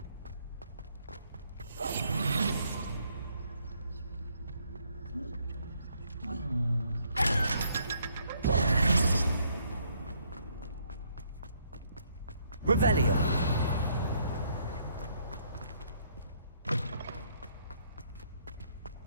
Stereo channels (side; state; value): both; inverted; correlation -0.69